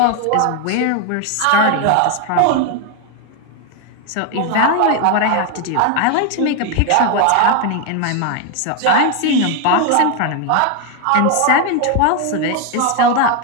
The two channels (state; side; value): different; both; correlation 0.01